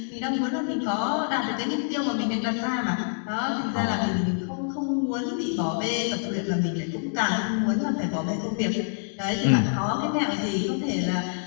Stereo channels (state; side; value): silent; right; digital silence